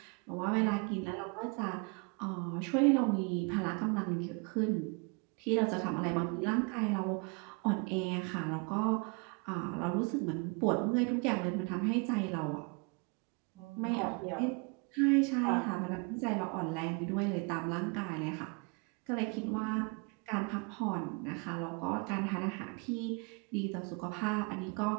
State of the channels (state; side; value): quieter; left; 32.9 dB